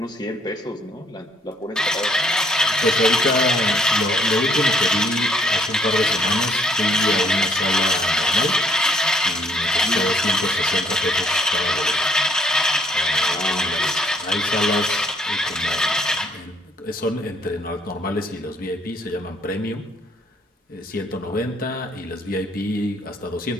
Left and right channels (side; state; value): both; normal; correlation 0.65